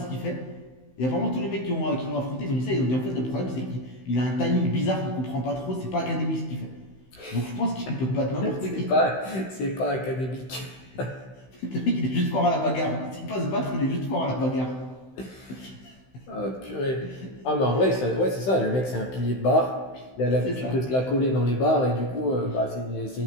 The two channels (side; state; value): right; late; 16 ms